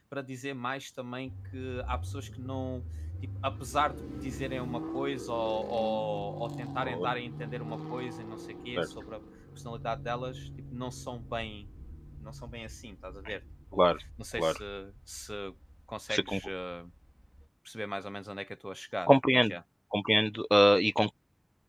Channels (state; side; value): identical; both; correlation 1.00